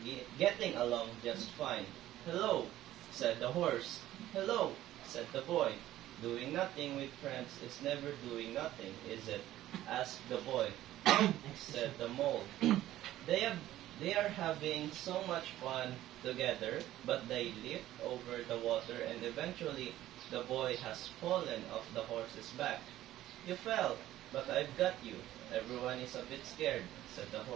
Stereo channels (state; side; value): quieter; left; 14.1 dB